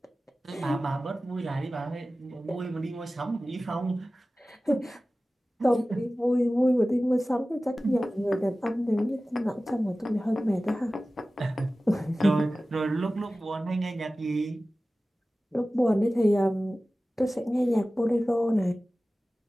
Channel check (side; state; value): both; normal; correlation 0.96